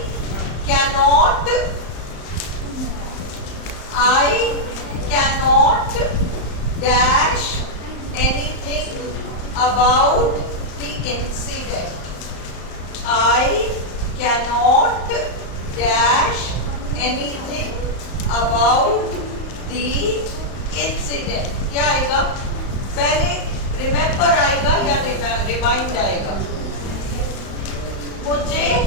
cannot dash anything about the incident. I cannot dash anything about the incident. क्या आएगा? पहले रिमेम्बर आएगा या रिमाइंड आएगा? मुझे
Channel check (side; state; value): right; late; 35 ms